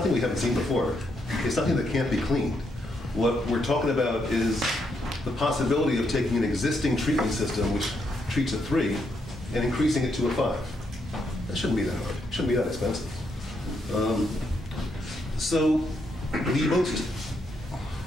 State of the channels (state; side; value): normal; both; correlation 0.78